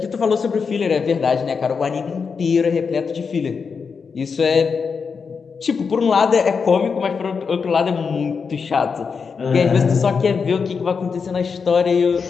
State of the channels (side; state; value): right; quieter; 5.6 dB